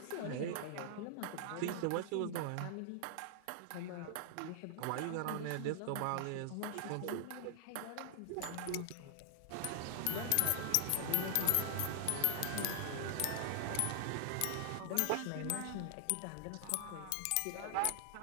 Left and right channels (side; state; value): both; different; correlation 0.00